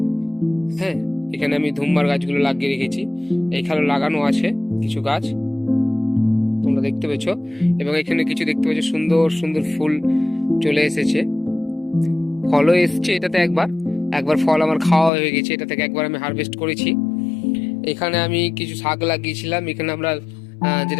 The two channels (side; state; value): right; drops out; at 15.1 s